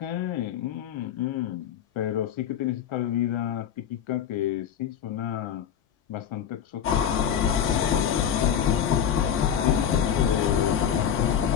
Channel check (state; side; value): quieter; right; 8.9 dB